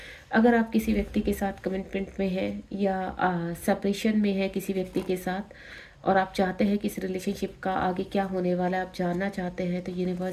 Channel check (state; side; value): identical; both; correlation 1.00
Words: अगर आप किसी व्यक्ति के साथ कमिटमेंट में हैं या सेपरेशन में है किसी व्यक्ति के साथ, और आप चाहते हैं कि इस रिलेशनशिप का आगे क्या होने वाला है, आप जानना चाहते हैं, तो